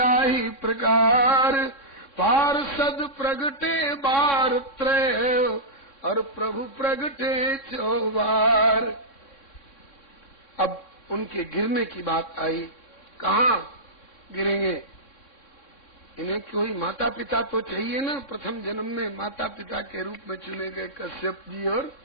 प्रकार, पार्षद प्रगटे बार त्रय और प्रभु प्रगटे 4 बार। अब उनके गिरने की बात आई। कहाँ गिरेंगे? इन्हें कोई माता पिता तो चाहिए ना। प्रथम जन्म में माता पिता के रूप में चुने गए कश्यप जी और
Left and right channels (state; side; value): late; right; 3.6 ms